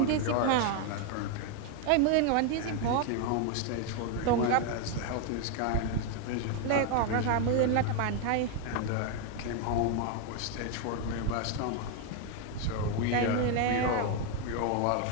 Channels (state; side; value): different; both; correlation 0.01